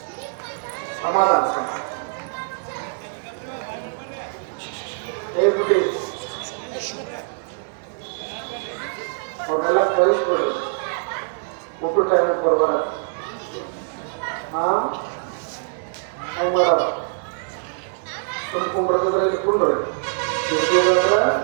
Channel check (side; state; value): left; silent; digital silence